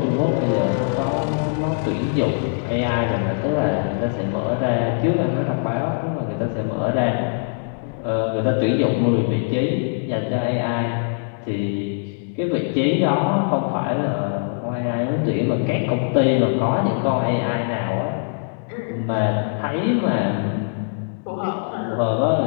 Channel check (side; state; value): right; silent; digital silence